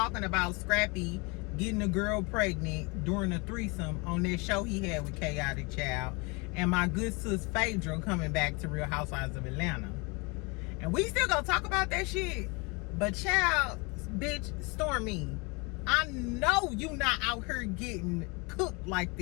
about Scrappy getting a girl pregnant during a threesome on that show he had with Chaotic Child, and my good sis Phaedra coming back to Real Housewives of Atlanta. And we still gonna talk about that shit. But child, bitch, Stormy, I know you not out here getting cooked like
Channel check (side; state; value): right; quieter; 29.0 dB